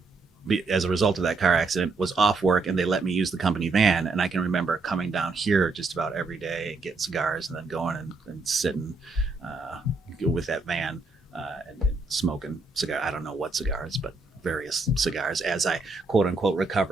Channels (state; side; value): quieter; left; 3.7 dB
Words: as a result of that car accident, was off work, and they let me use the company van. And I can remember coming down here just about every day and getting cigars, and then going and sitting with that van and smoking cigar. I don't know what cigars, but various cigars as I quote unquote